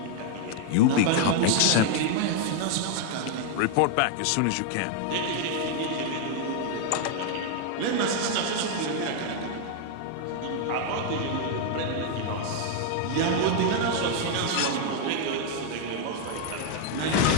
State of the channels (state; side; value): different; both; correlation 0.00